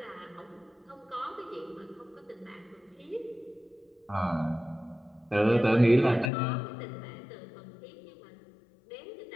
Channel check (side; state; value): right; drops out; at 6.3 s